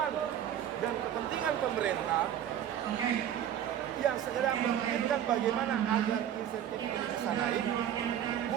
dan kepentingan pemerintah yang segera memikirkan bagaimana agar insentif ini bisa naik.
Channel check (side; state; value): left; quieter; 10.3 dB